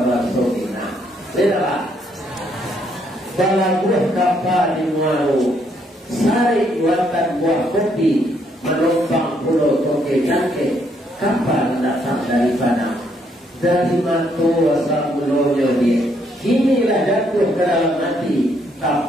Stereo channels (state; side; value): normal; both; correlation 0.71